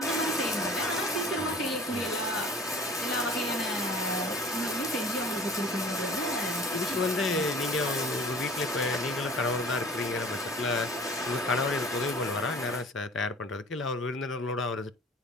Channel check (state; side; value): normal; both; correlation 0.46